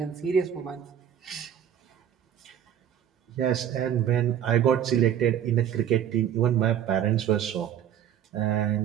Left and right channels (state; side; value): quieter; left; 9.7 dB